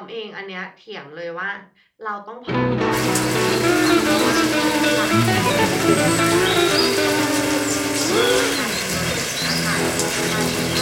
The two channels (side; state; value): both; identical; correlation 1.00